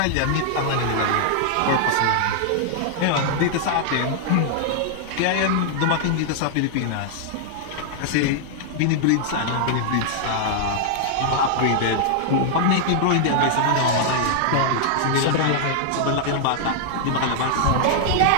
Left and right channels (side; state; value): both; different; correlation -0.01